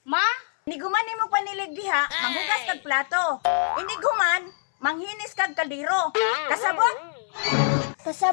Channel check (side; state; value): right; silent; 62 dB below the other